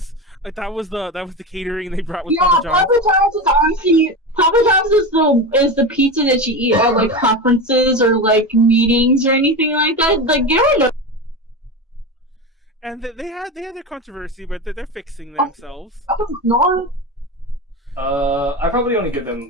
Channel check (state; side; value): normal; both; correlation 0.22